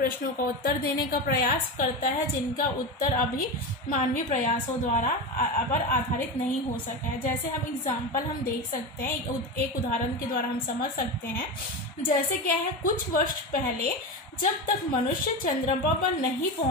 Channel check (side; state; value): both; normal; correlation 0.21